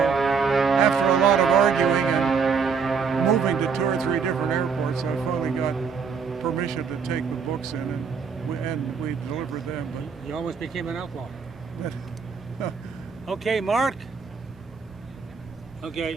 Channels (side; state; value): left; quieter; 5.8 dB